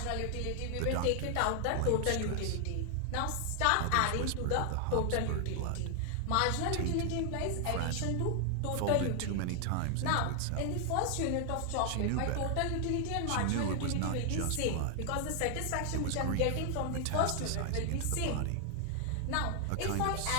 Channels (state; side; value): different; both; correlation 0.00